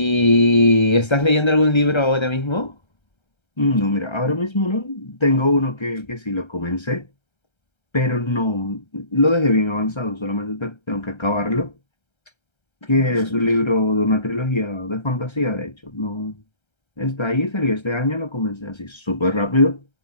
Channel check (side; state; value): right; late; 1.3 ms